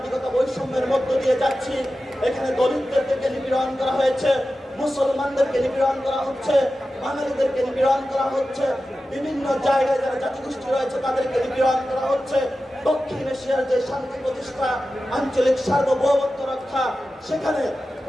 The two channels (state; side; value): normal; both; correlation 0.93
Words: বৈষম্যের মধ্য দিয়ে যাচ্ছি। এখানে দলিতদেরকে নিপীড়ন করা হয়েছে, মুসলমানদেরকে নিপীড়ন করা হচ্ছে, বাঙালিদেরকে নিপীড়ন করা হচ্ছে, বিভিন্ন জায়গায় যারা জাতিগোষ্ঠী রয়েছে তাদেরকে নিপীড়ন করা হচ্ছে। দক্ষিণ এশিয়ার যে শান্তি প্রতিষ্ঠা, আঞ্চলিক সার্বভৌমত্ব রক্ষা, সেখানে